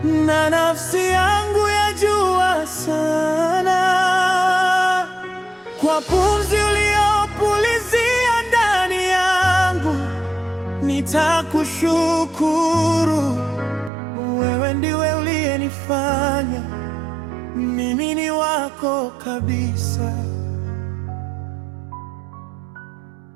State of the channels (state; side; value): drops out; left; at 13.9 s